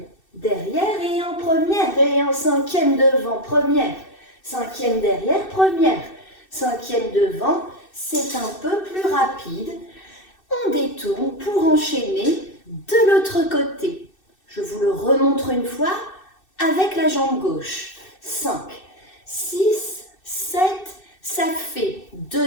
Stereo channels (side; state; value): right; late; 2.6 ms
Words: derrière et en première et en cinquième devant, première, cinquième derrière, première, cinquième devant, c'est un peu plus rapide. On détourne pour enchaîner de l'autre côté. Je vous le remontre une fois avec la jambe gauche. 5, 6, 7, ça fait